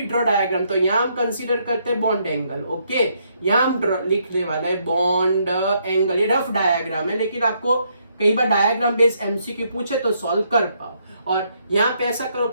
ड्रॉ डायग्राम? तो यहाँ हम कंसीडर करते हैं बॉन्ड एंगल। ओके, यहाँ हम लिखने वाला है बॉन्ड एंगल। ये रफ डायग्राम है, लेकिन आपको कई बार डायग्राम बेस्ड एमसीक्यू पूछे तो सॉल्व कर पाओ। और यहाँ पे ऐसा करो,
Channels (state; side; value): inverted; both; correlation -0.73